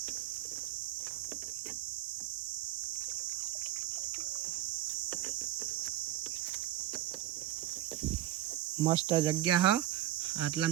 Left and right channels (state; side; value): quieter; left; 13.8 dB